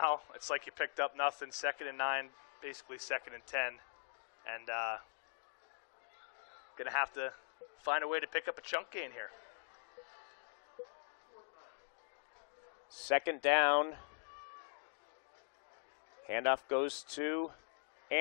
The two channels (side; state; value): right; silent; digital silence